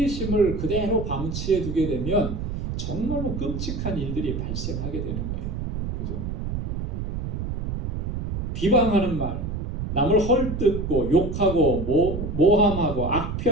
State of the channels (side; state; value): right; noise; rumble, 3 dB below the sound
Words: 그대로 방치해 두게 되면 정말로 끔찍한 일들이 발생하게 되는 거예요. 그죠? 비방하는 말, 남을 헐뜯고 욕하고 모함하고